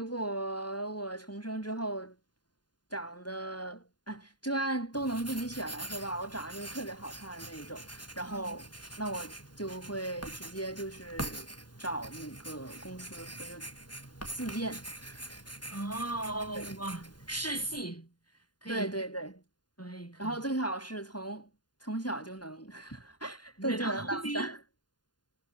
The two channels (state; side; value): late; right; 0.70 ms